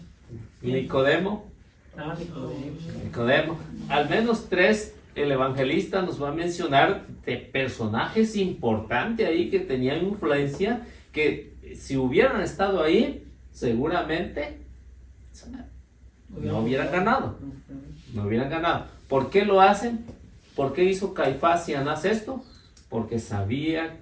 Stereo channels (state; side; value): identical; both; correlation 1.00